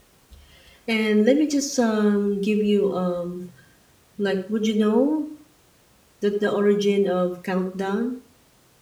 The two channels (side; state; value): both; identical; correlation 1.00